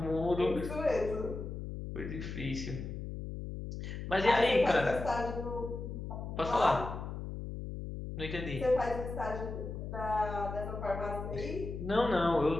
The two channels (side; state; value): left; noise; hum, 7 dB below the sound